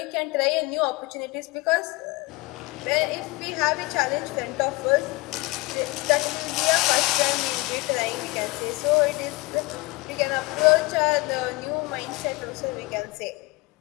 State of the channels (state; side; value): quieter; right; 23.9 dB